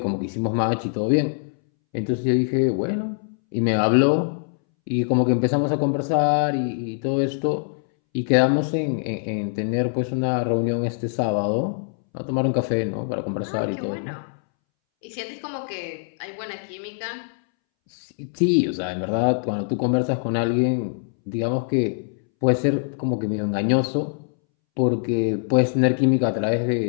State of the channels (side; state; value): right; silent; 63 dB below the other